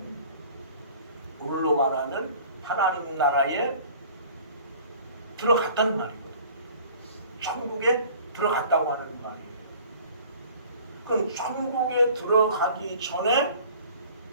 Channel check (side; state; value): both; inverted; correlation -0.48